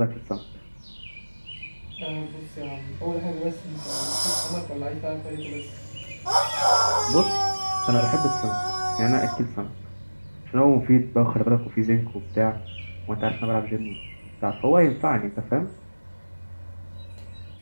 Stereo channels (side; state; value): both; inverted; correlation -1.00